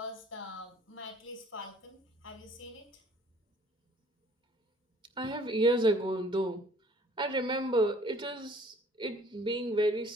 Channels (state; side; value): normal; both; correlation 0.56